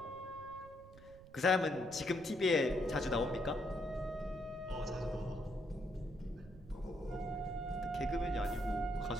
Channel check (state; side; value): noise; right; rumble, 19 dB below the sound